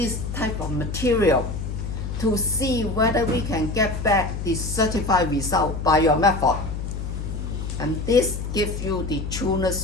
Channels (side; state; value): left; noise; hum, 5 dB below the sound